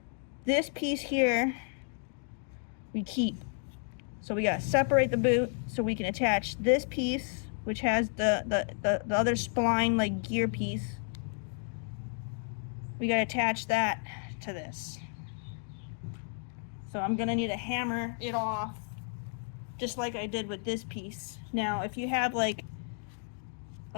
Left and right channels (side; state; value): right; silent; 56 dB below the other